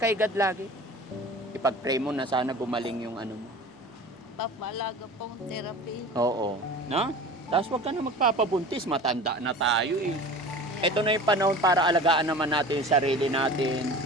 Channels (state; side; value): normal; both; correlation 0.38